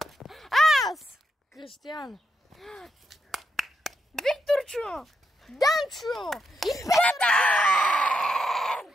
Аз, Кристиян, Викторчо, Данчо и Петър!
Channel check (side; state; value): both; normal; correlation 0.82